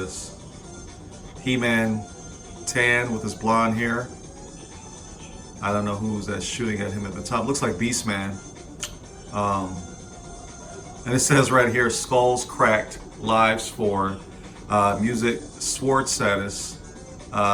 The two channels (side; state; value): both; identical; correlation 1.00